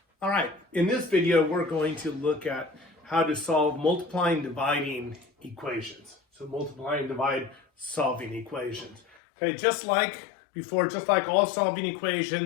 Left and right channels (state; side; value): drops out; right; at 9.2 s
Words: All right, in this video, we're going to look at how to solve multiplying and dividing equations. So multiply and divide solving equations. Okay, just like before, just like all solving